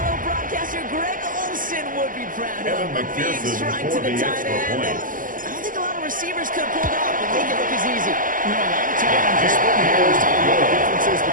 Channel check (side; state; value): left; late; 0.39 ms